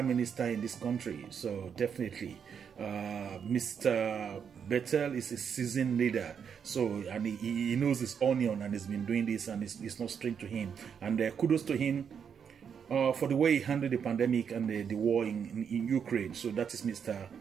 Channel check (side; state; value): left; quieter; 7.3 dB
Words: minister in this country. So definitely Mr. Bettel is a seasoned leader, so, and he knows his onion, and has been doing this, and it's not strange to him. And kudos to him for the way he handled the pandemic and the war in Ukraine. So that is Mr.